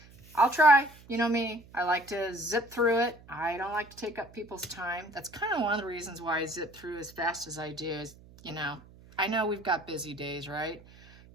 I'll try. You know me. I like to zip through it. I don't like to take up people's time. That's kind of one of the reasons why I zip through as fast as I do is, I know we've got busy days, right?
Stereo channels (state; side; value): noise; right; hum, 23 dB below the sound